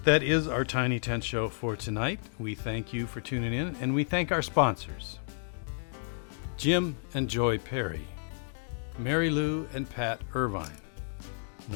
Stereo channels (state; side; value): silent; right; digital silence